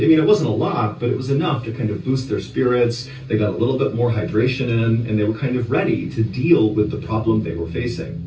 mean, it wasn't a lot, but it was enough to kind of boost their spirits. They got a little bit more hydration in, and they were kind of ready to deal with the problem they were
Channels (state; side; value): identical; both; correlation 1.00